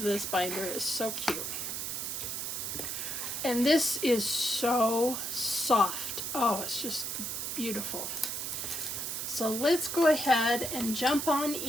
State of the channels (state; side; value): noise; right; hiss, 3 dB below the sound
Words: this binder, it's so cute. And this is so soft. Oh, it's just beautiful. So let's go ahead and jump on